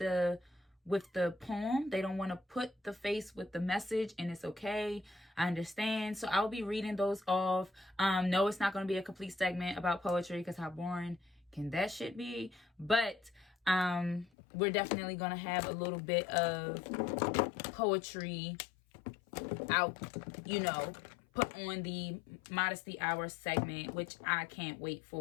poem. They don't want to put the face with the message, and it's okay. I understand. So I'll be reading those off. No, it's not going to be a complete segment about poetry because how boring can that shit be? But we're definitely going to have a little bit of poetry out, you know, put on the Modesty Hour segment, which I can't wait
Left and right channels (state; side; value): drops out; right; at 14.3 s